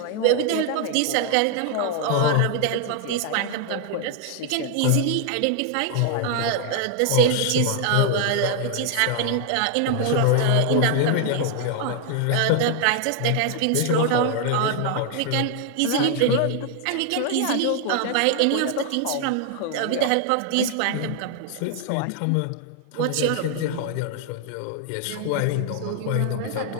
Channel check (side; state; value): both; different; correlation 0.00